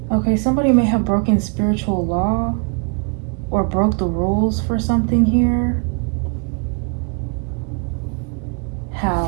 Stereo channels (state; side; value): quieter; left; 38.0 dB